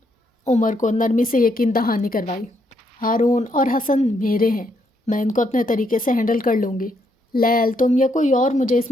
عمر کو نرمی سے یقین دہانی کروائی۔ ہارون اور حسن میرے ہیں، میں ان کو اپنے طریقے سے ہینڈل کر لوں گی۔ لیل، تم یا کوئی اور، مجھے اس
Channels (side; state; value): both; normal; correlation 0.75